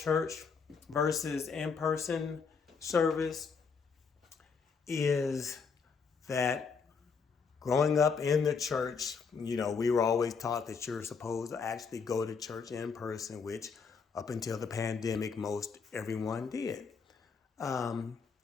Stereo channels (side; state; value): right; quieter; 5.5 dB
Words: versus in-person service is that growing up in the church, we were always taught that you're supposed to actually go to church in person, which up until the pandemic, most everyone did.